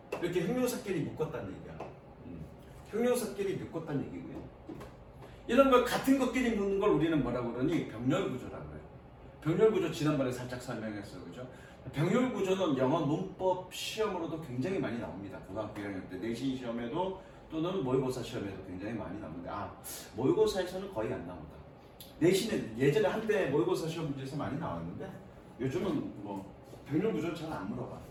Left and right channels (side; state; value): both; identical; correlation 1.00